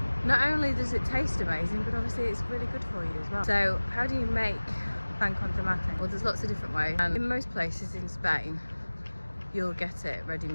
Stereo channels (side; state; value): both; inverted; correlation -1.00